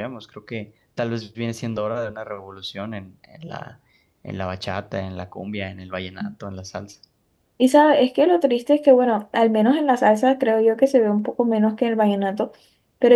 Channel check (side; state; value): both; identical; correlation 1.00